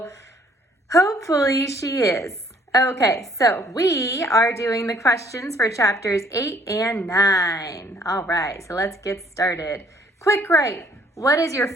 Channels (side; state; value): both; normal; correlation 0.62